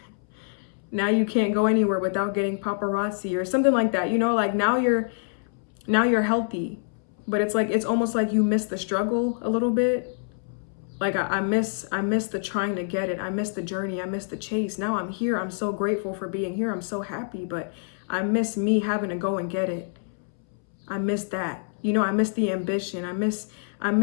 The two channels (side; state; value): right; silent; 61 dB below the other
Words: Now you can't go anywhere without getting paparazzi or something like that. You know, like now you're healthy, but it's like, it's almost like you miss the struggle a little bit. Like I miss the trying to get it. I miss the journey. I miss the chase. Now I'm here. I'm so grateful for being here. I'm so happy, but I miss me having to go and get it. I miss that. You know, I miss the ambition. I miss